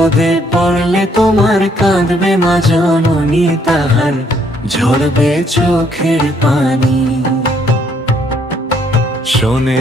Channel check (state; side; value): normal; both; correlation 0.68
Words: পড়লে তোমার কাঁদবে মা জননী, তাহার ঝরবে চোখের পানি।